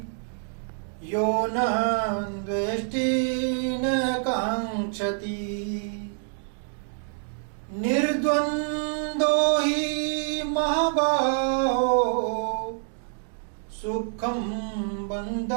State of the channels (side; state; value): left; silent; digital silence